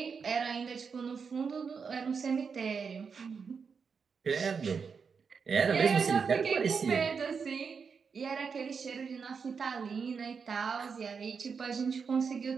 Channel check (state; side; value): quieter; left; 5.8 dB